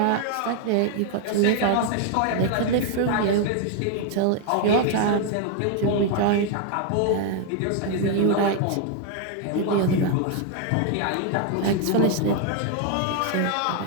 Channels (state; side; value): different; both; correlation 0.00